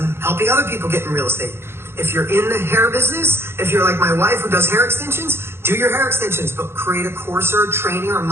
helping other people get in real estate. If you're in the hair business, if you're like my wife who does hair extensions, do your hair extensions, but create a course or a training or a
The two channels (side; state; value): left; late; 0.12 ms